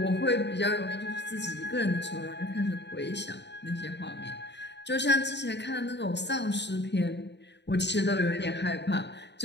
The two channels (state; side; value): late; right; 0.50 ms